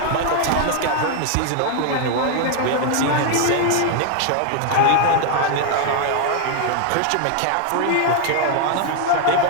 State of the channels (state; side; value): different; both; correlation 0.00